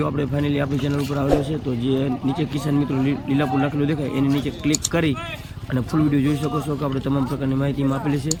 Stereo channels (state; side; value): identical; both; correlation 1.00